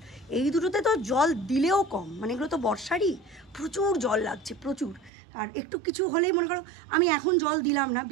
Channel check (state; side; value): drops out; left; at 5.1 s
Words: এই দুটোতে তো জল দিলেও কম, মানে এগুলো তো বর্ষারই, প্রচুর জল লাগছে প্রচুর। আর একটু কিছু হলেই মনে করো আমি এখন জল দিলাম না,